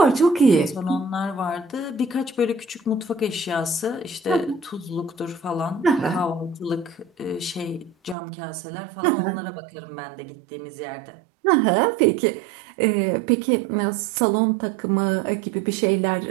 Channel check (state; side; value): drops out; left; at 8.2 s